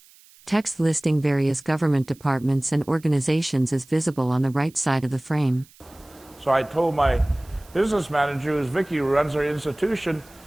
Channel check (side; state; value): right; noise; hiss, 27 dB below the sound